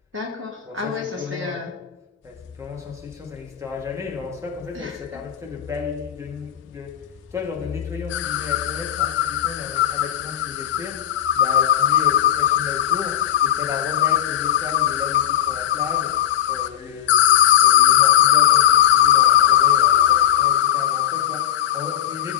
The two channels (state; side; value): quieter; right; 11.1 dB